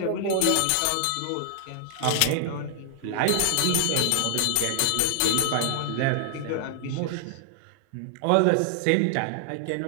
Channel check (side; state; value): both; different; correlation 0.00